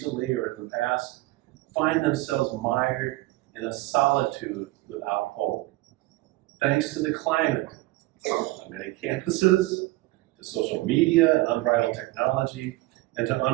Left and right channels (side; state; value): left; quieter; 19.6 dB